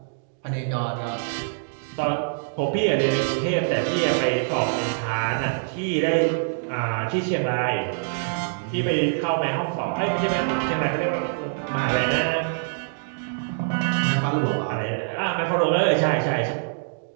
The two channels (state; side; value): silent; left; digital silence